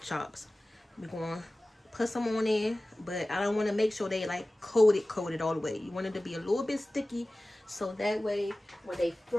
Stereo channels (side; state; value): both; normal; correlation 0.97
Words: chops. We're going to put some on in, but I don't want to make sure they like coated all the way. You want it to be a little bit sticky, so that way when they